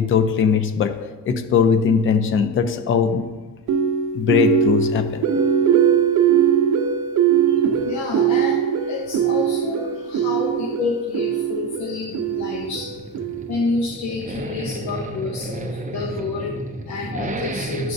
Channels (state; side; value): normal; both; correlation 0.17